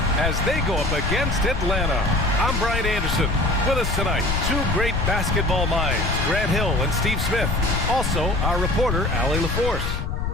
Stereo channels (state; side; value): noise; left; rumble, 1 dB below the sound